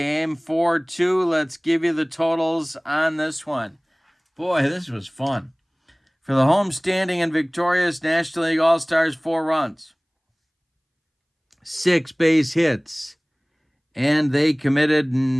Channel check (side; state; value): both; identical; correlation 1.00